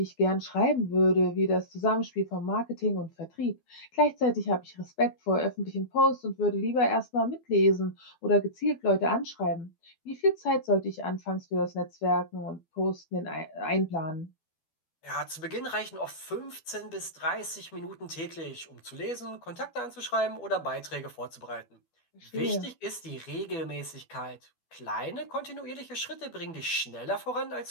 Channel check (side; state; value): right; late; 12 ms